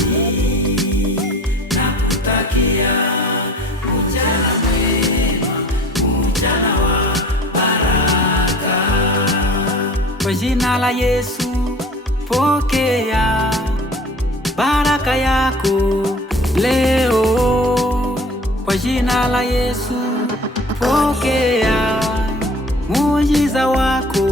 Nakutakia mchana mwema, mchana wa baraka. Kwa jina la Yesu pokea baraka yako leo. Kwa jina la Yesu pokea muujiza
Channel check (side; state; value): both; normal; correlation 0.45